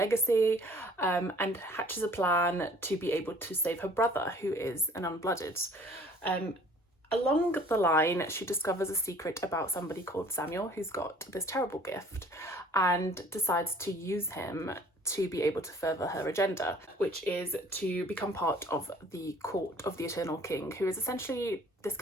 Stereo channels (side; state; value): both; normal; correlation 0.53